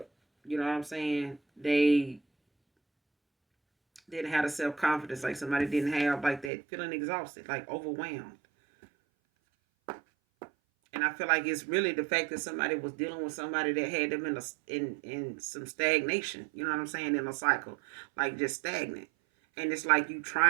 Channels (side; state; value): left; drops out; at 6.5 s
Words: You know what I'm saying? They didn't have the self-confidence, like somebody didn't have like that, feeling exhausted, like overwhelmed. And I feel like it's really the fact that somebody was dealing with somebody that had them in some stagnation. You know what I'm saying? In a cycle, like just stagnant. And it's like you